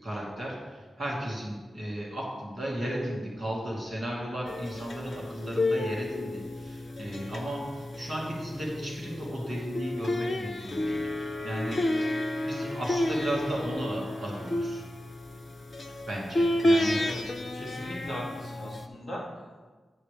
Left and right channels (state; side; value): normal; both; correlation 0.92